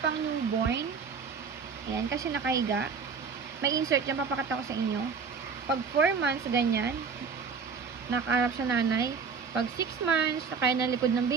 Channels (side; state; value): left; quieter; 5.5 dB